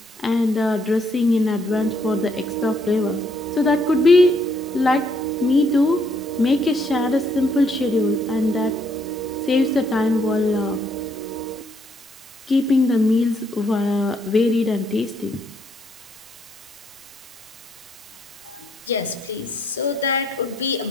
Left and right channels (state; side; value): normal; both; correlation 0.71